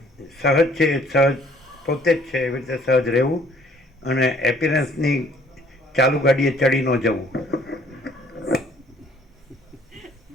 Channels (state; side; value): normal; both; correlation 0.60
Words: સહજ છે, સહજ પોતે જ છે, એવી રીતે સહજ રહેવું અને એપિયરન્સની ચાલુ ગાડીએ ચડી ન જવું.